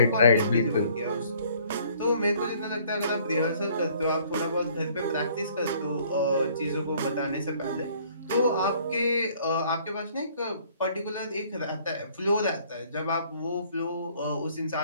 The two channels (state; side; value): inverted; both; correlation -0.58